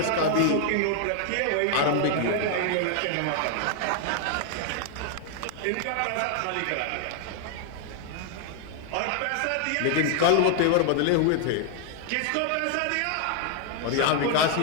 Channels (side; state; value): both; different; correlation 0.00